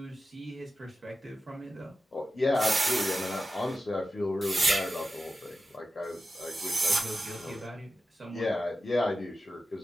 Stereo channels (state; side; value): normal; both; correlation 0.92